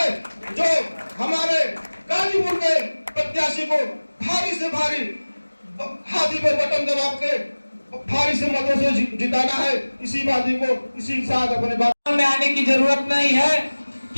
जो हमारे गाजीपुर के प्रत्याशी को भारी से भारी हाथी पर बटन दबा के भारी से मतों से जिताना है। इसी बात को इसी साथ अपने बात में आने की जरूरत नहीं है,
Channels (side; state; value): both; inverted; correlation -1.00